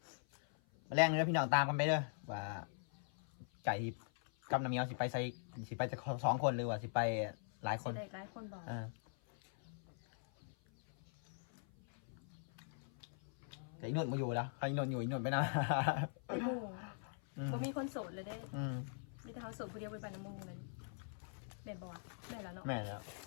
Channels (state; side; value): silent; right; 50 dB below the other